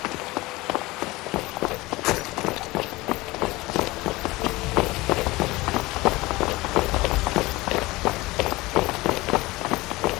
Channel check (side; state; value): right; quieter; 20.8 dB